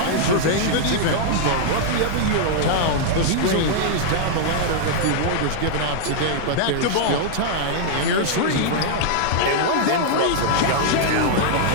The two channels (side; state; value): both; different; correlation -0.01